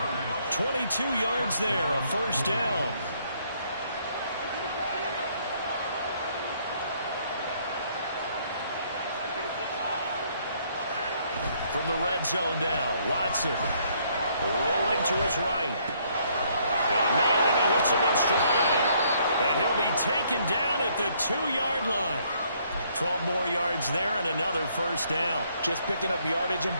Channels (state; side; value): inverted; both; correlation -0.67